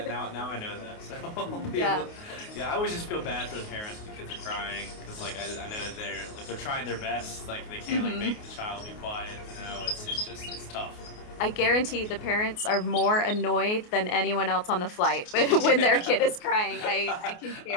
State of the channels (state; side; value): late; right; 28 ms